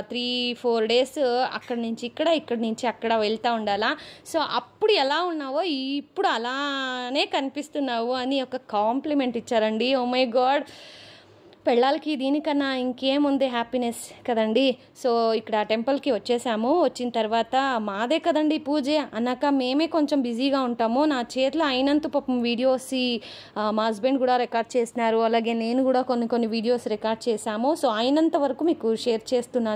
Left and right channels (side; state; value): both; identical; correlation 1.00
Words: 3-4 డేస్ అక్కడి నుంచి ఇక్కడి నుంచి అక్కడ వెళ్తూ ఉండాలా. సో అప్పుడు ఎలా ఉన్నావో ఇప్పుడు అలానే కనిపిస్తున్నావు అని ఒక కాంప్లిమెంట్ ఇచ్చారండి. ఓ మై గాడ్, పెళ్ళాలకి దీనికన్నా ఇంకేముంది హ్యాపీనెస్ కదండి. సో ఇక్కడ టెంపుల్కి వచ్చేసాము. వచ్చిన తర్వాత మాదే కదండి పూజ అన్నాక మేమే కొంచెం బిజీగా ఉంటాము. నా చేతిలో అయినంత పాపం వీడియోస్ మా హస్బెండ్ కూడా రికార్డ్ చేసినారు, అలాగే నేను కూడా కొన్ని వీడియోస్ రికార్డ్ చేశాము. సో అయినంత వరకు మీకు షేర్